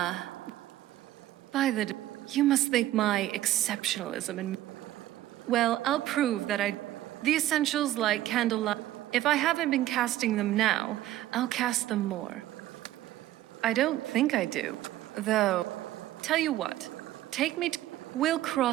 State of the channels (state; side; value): quieter; left; 14.3 dB